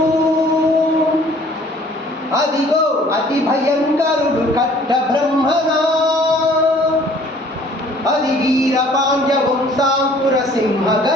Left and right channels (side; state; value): both; normal; correlation 0.55